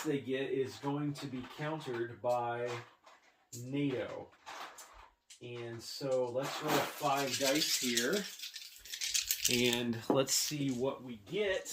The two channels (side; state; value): both; identical; correlation 1.00